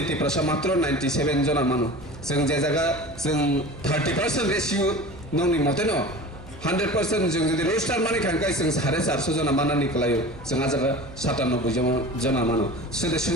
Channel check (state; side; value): normal; both; correlation 0.36